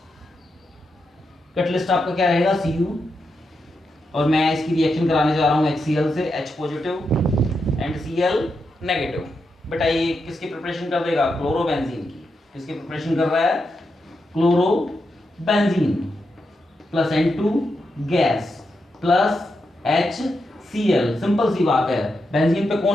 कैटलिस्ट आपका क्या रहेगा? Cu। और मैं इसकी रिएक्शन कराने जा रहा हूँ HCl से, H positive and Cl negative. बेटा ये किसकी प्रिपरेशन कर देगा? क्लोरोबेंजीन की। किसकी प्रिपरेशन कर रहा है? Chlorobenzene plus N2 gas plus HCl। Simple सी बात है। बेंजीन पे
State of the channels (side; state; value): both; normal; correlation 0.85